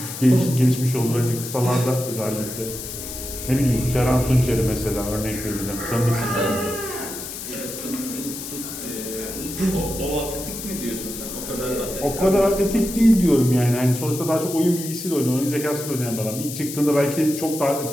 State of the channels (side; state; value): left; noise; hiss, 9 dB below the sound